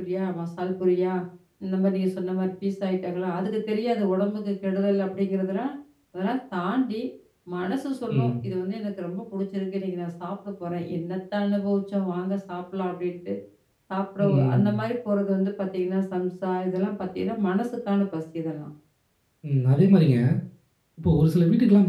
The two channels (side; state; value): both; identical; correlation 1.00